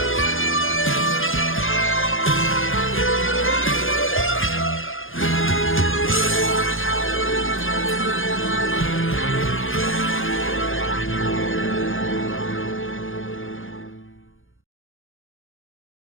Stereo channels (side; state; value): right; late; 0.59 ms